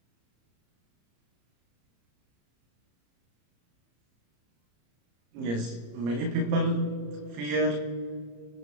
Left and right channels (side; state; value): left; late; 34 ms